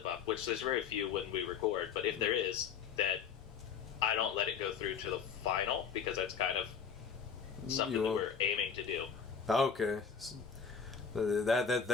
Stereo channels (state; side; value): quieter; right; 6.7 dB